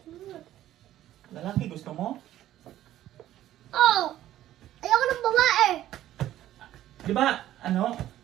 mo. Lalaki gusto mo? Oo! Ayoko ng babae! Di ba, ano?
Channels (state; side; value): quieter; left; 13.2 dB